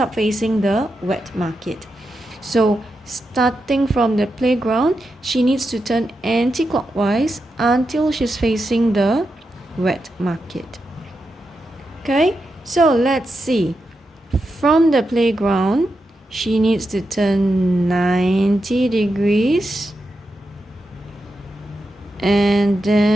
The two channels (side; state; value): both; normal; correlation 0.87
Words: facing the wet market. So starting from the playground, she needs to turn anti-clockwise until she's facing the wet market. Okay, so let's see. From the playground, she needs to turn 90 degrees and